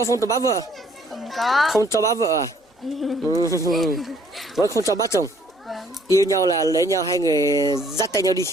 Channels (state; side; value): normal; both; correlation 0.62